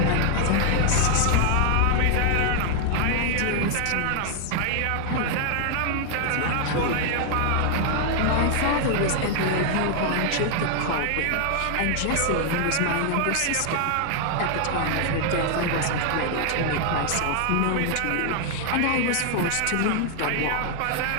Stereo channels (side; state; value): both; different; correlation 0.00